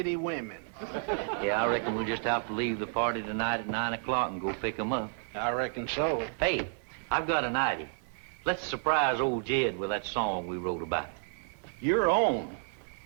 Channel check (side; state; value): left; silent; digital silence